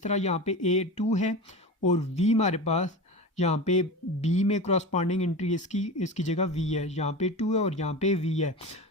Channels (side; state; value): both; normal; correlation 0.27